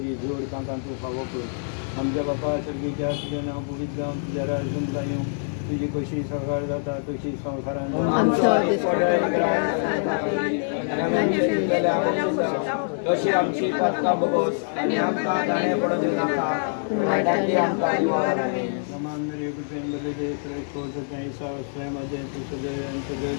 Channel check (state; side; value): silent; right; 56 dB below the other